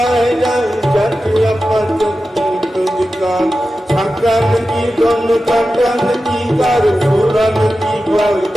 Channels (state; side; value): normal; both; correlation 0.93